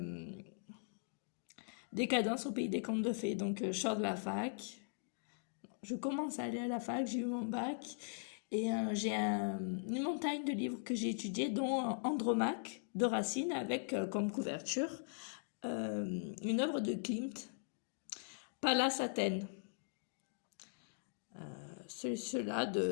Décadence au pays des contes de fées. Donc je sors de la fac, je commence à aller à la fac, j'ai eu mon bac et j'ai une montagne de livres que j'ai étudiés, dont Andromaque de Racine avec comme couverture une œuvre de Klimt, Pallas Athènes. Cela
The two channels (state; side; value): silent; right; digital silence